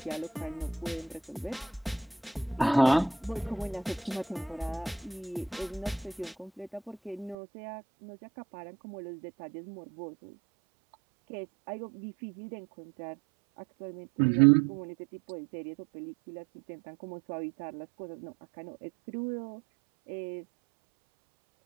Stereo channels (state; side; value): drops out; left; at 7.4 s